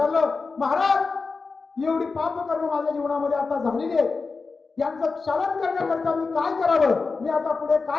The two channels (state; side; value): quieter; right; 4.3 dB